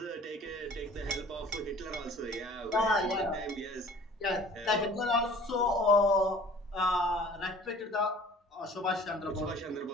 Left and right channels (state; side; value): normal; both; correlation 0.48